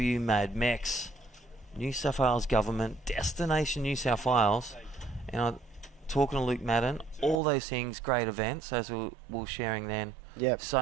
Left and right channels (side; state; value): left; drops out; at 7.4 s